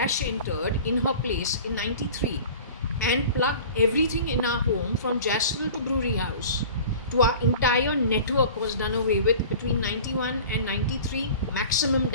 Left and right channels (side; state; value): both; inverted; correlation -0.40